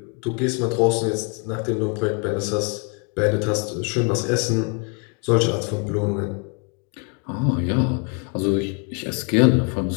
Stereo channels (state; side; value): quieter; right; 36.2 dB